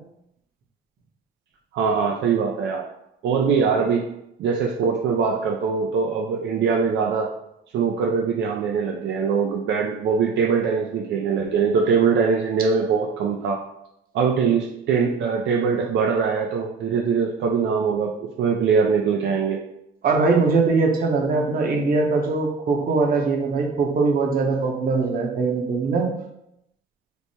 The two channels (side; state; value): left; quieter; 4.9 dB